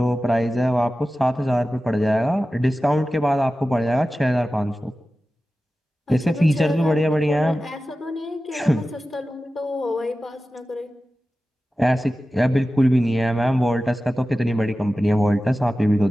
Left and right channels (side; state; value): both; normal; correlation 0.95